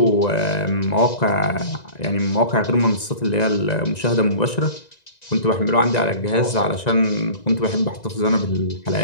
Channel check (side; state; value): right; late; 1.9 ms